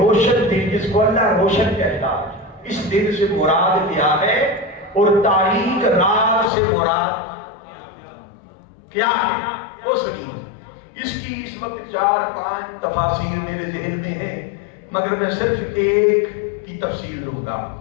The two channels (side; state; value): right; drops out; at 6.5 s